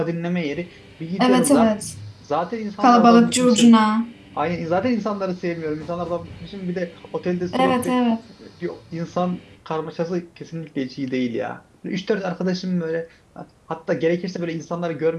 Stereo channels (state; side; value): identical; both; correlation 1.00